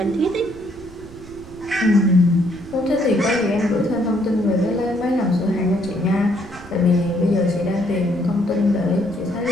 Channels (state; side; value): noise; right; rumble, 19 dB below the sound